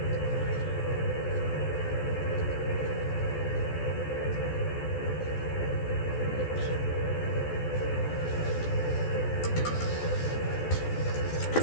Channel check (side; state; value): right; late; 14 ms